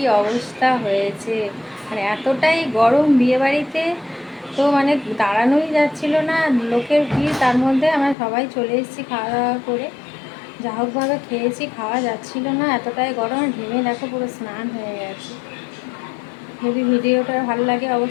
অবস্থা হয়েছে, মানে এতটাই গরম বিয়ে বাড়িতে, তো মানে দাঁড়ানোই যাচ্ছিল না, লোকের ভিড়। তার মধ্যে আমরা সবাই চলে এসেছি খাওয়া দাওয়া করে। যা হোকভাবে খেয়েছি, খাওয়া যাচ্ছিল না, এতটাই গরম। ঘেমে দেখো পুরো স্নান হয়ে গেছে। যদি ভিডিওটা ভালো লাগে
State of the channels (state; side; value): drops out; right; at 8.2 s